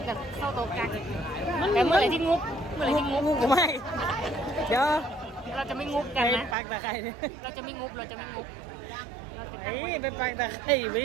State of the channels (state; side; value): drops out; left; at 6.6 s